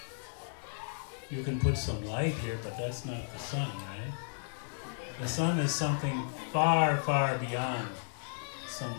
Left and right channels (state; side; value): silent; right; digital silence